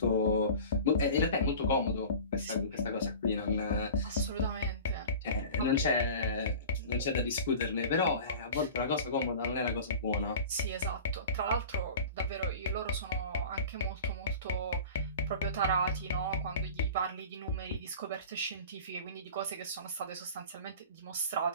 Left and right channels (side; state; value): both; inverted; correlation -0.37